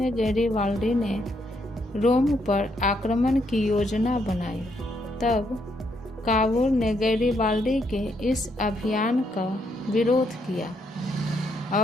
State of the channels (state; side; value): normal; both; correlation 0.75